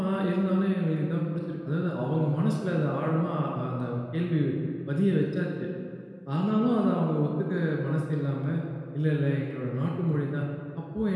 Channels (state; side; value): identical; both; correlation 1.00